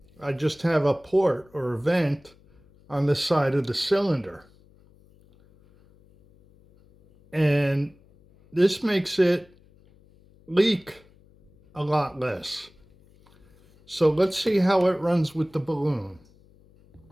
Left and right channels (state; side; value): noise; left; hum, 29 dB below the sound